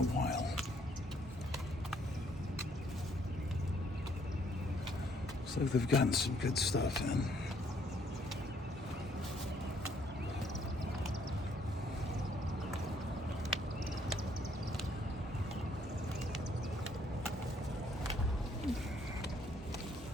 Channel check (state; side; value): normal; both; correlation 0.67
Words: while. Looks like they've gotten some good stuff in.